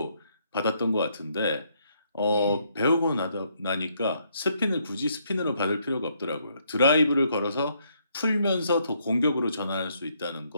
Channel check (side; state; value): both; inverted; correlation -0.72